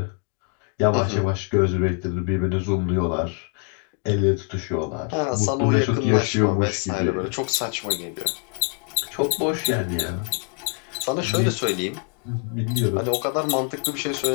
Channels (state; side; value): quieter; right; 38.1 dB